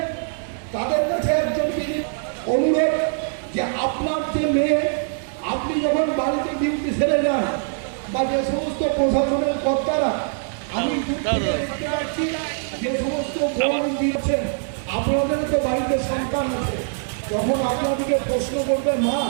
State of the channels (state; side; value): silent; left; digital silence